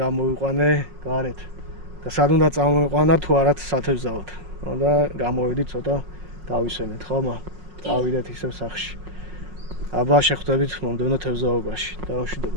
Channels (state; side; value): late; left; 5.5 ms